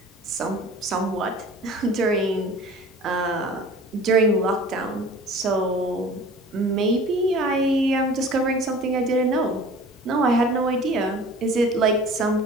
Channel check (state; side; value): normal; both; correlation 0.44